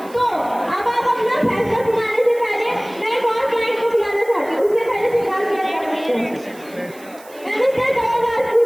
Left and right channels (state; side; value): noise; right; hiss, 23 dB below the sound